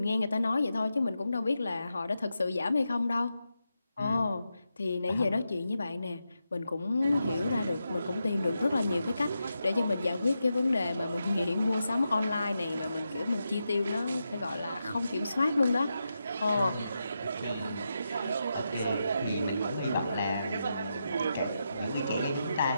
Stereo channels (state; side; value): inverted; both; correlation -0.87